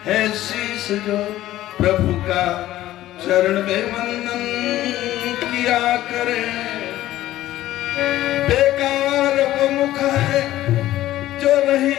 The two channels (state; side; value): quieter; right; 14.5 dB